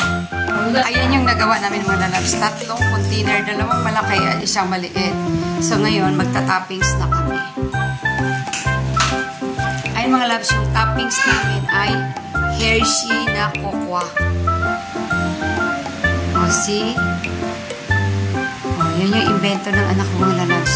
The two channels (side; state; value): both; identical; correlation 1.00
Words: Ayan yung nagawa namin mga lalabs. 3 container, 2 malaki at 1 maliit. So, ngayon, magta-toppings na kami. Ayan mga lalabs, yung toppings namin ay Hershey na cocoa. O, see? Yan yung invento ng anak ko mga